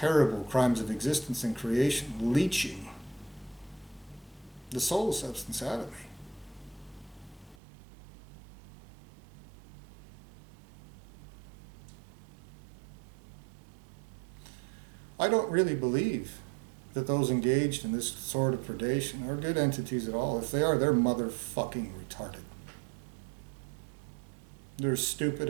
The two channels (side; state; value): left; drops out; at 7.6 s